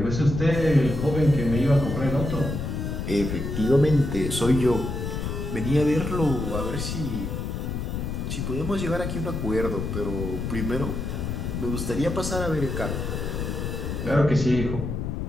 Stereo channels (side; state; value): left; noise; rumble, 3 dB below the sound